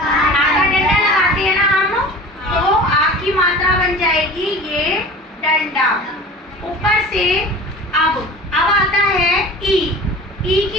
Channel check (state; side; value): normal; both; correlation 0.39